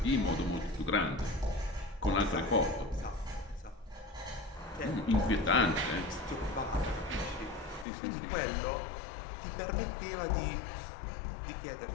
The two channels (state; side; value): drops out; right; at 7.9 s